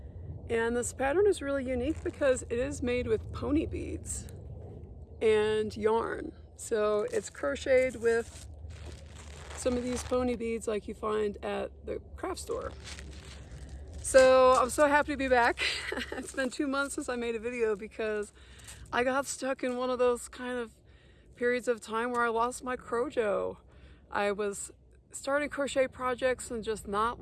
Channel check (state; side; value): identical; both; correlation 1.00